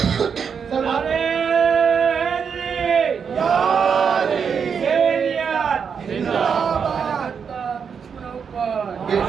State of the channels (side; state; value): left; quieter; 6.6 dB